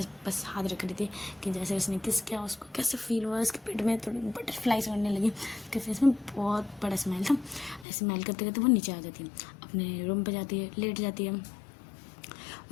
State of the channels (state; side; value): drops out; right; at 7.9 s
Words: बस हाथ रख रही थी कि जैसे उसने किस किया उसको कैसे फील हुआ, उसके पेट में थोड़ी बटरफ्लाइज उड़ने लगी, उसके फेस में बहुत बड़ा स्माइल था। ऐसे स्माइल करते करते वो नीचे आ जाती है, अपने रूम पे जाती है, लेट जाती है।